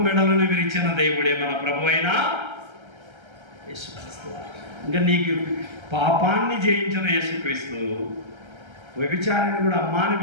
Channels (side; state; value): left; late; 1.3 ms